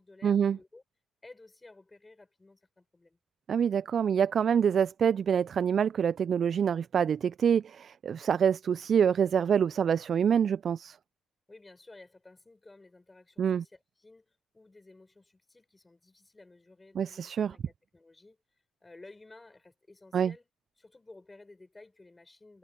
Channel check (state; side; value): quieter; left; 7.4 dB